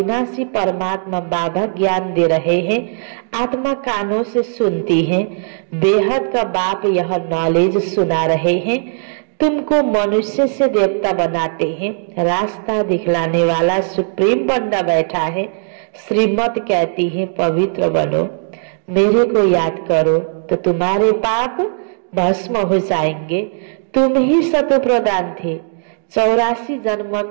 परमात्मा बाबा ज्ञान दे रहे हैं। आत्मा कानों से सुनती है, बेहद का बाप यह नॉलेज सुना रहे हैं। तुमको मनुष्य से देवता बनाते हैं, रास्ता दिखलाने वाला सुप्रीम बंदा बैठा है। श्रीमत कहती है पवित्र बनो, मेरे को याद करो तो तुम्हारे पाप भस्म हो जाएंगे। तुम ही सतो प्रदान थे, 84 जन्म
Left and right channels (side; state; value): left; silent; digital silence